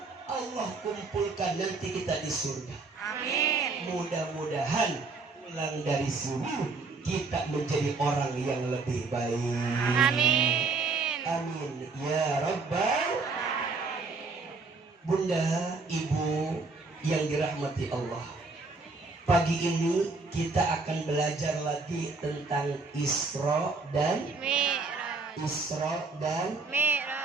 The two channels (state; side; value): quieter; left; 4.0 dB